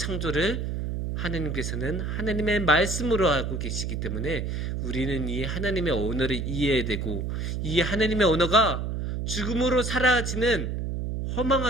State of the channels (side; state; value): right; noise; hum, 3 dB below the sound